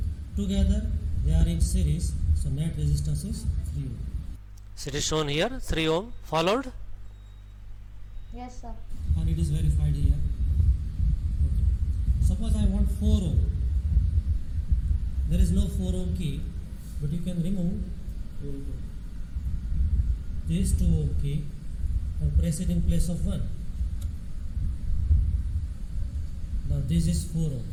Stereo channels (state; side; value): identical; both; correlation 1.00